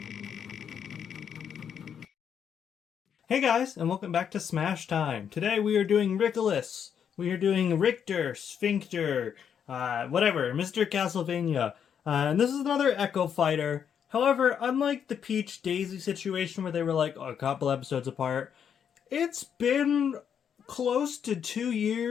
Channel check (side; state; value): right; quieter; 8.0 dB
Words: guys, and welcome back to Smash Time. Today we are doing Rickolas. We are doing Richter, Sphincter, whatever, Mr. Castlevania. And this is another Echo Fighter. However, unlike the Peach Daisy situation where they were like a couple episodes apart, it's been close to 2